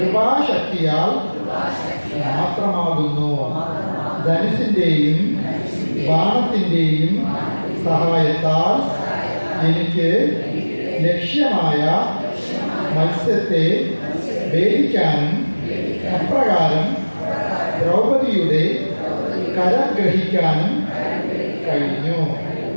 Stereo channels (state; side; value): inverted; both; correlation -1.00